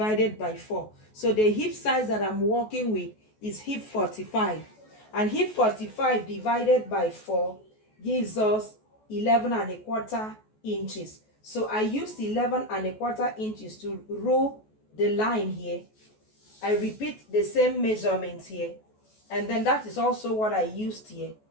by 4. So the hip size that I'm working with is hip 45. And hip 45 divided by 4 gives us 11¼ inches. So I used 11¼ inches to rule the line here. I repeat the same measurements here, and then that is also what I used here.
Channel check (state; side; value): late; right; 14 ms